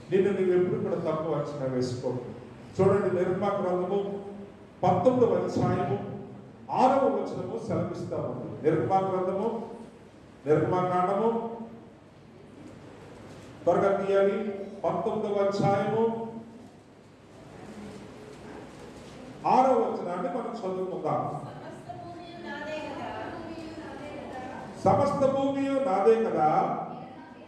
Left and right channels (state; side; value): identical; both; correlation 1.00